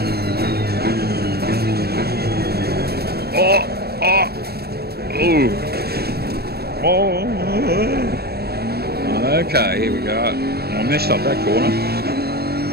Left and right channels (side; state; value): left; late; 0.46 ms